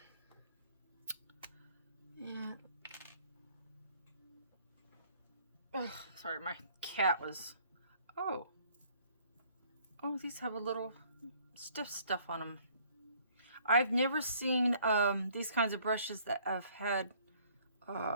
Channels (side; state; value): both; inverted; correlation -0.60